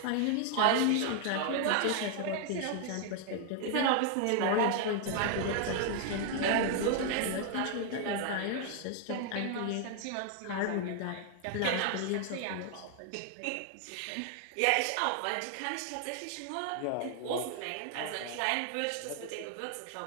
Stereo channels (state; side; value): different; both; correlation 0.00